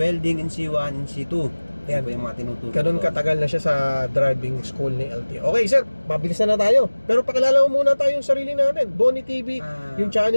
in C1, in C2. Yan po yung mga tinuturo. Ganun katagal na siya sa driving school ni LTO. Okay sir, mabilis na tayo. Pero pakilala mo muna tayo yung sarili natin. Bonnie TV, yung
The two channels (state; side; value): inverted; both; correlation -1.00